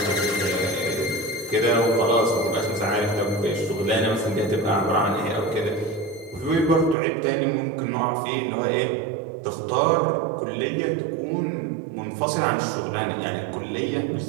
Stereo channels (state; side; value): drops out; left; at 7.0 s